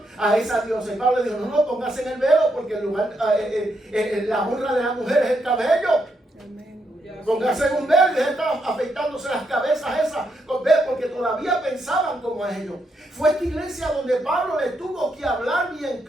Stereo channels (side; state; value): both; normal; correlation 0.79